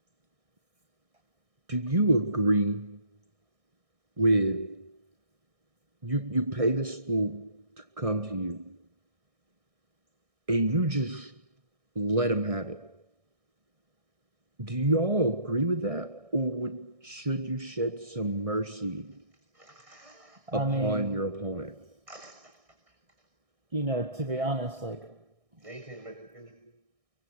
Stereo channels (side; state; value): left; late; 1.6 ms